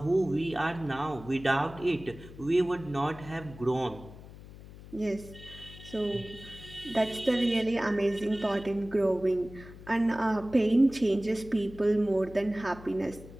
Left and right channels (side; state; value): left; noise; hum, 17 dB below the sound